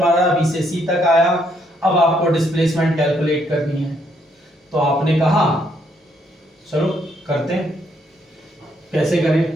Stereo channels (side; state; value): both; normal; correlation 0.72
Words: B से C तक आया। अब आपको डिस्प्लेसमेंट कैलकुलेट करनी है, तो आपने कहा चलो करते हैं, कैसे